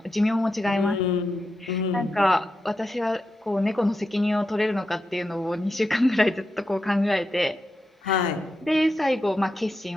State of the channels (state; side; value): normal; both; correlation 0.87